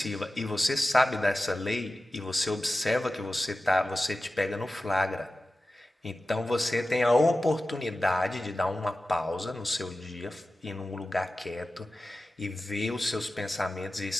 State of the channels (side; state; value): both; normal; correlation 0.95